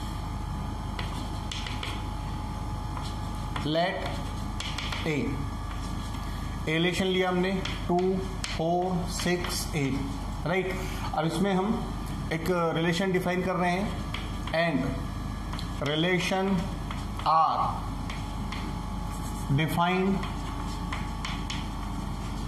let a relation लिया हमने 2, 4, 6, 8, राइट। अब इसमें हम एक रिलेशन डिफाइन कर रहे हैं, and relation R defined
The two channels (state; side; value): identical; both; correlation 1.00